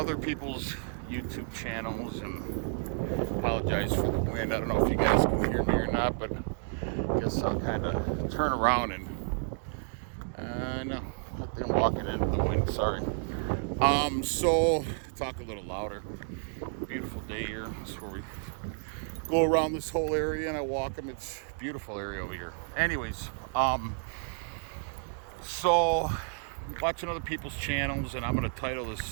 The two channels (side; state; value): left; silent; 57 dB below the other